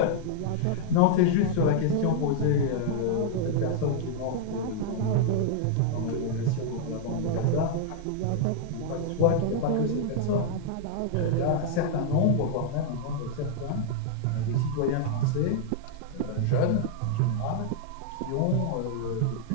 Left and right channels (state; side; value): different; both; correlation -0.01